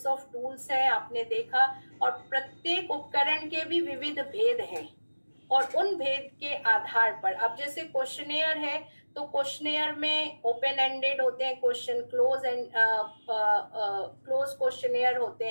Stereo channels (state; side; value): inverted; both; correlation -1.00